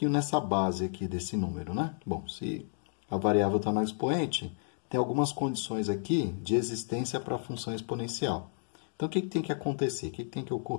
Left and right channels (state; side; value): silent; right; digital silence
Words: nessa base aqui desse número, né? Bom, se a variável está no expoente, tem algumas condições aqui de existência para a função exponencial. Então, o que tem que acontecer? O que tem que